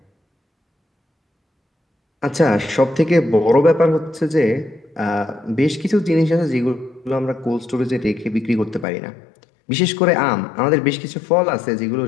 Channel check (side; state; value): right; drops out; at 8.8 s